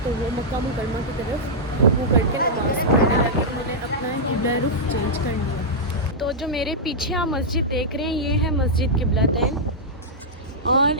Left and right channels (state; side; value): normal; both; correlation -0.09